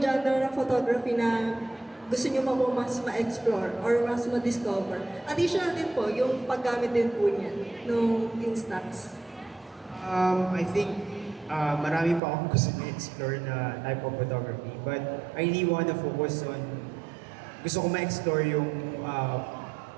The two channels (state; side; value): drops out; left; at 12.2 s